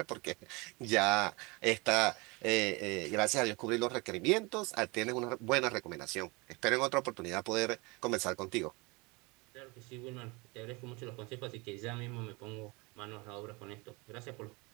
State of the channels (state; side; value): quieter; left; 26.6 dB